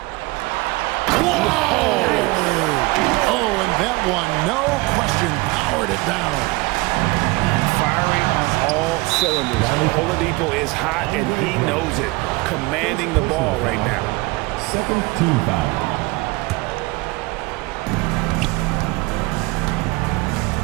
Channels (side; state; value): left; quieter; 23.4 dB